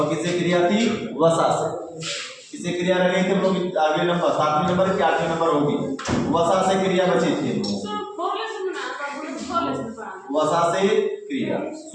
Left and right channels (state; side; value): identical; both; correlation 1.00